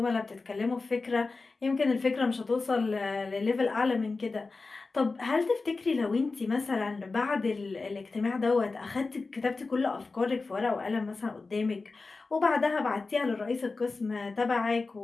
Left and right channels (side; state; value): right; quieter; 3.9 dB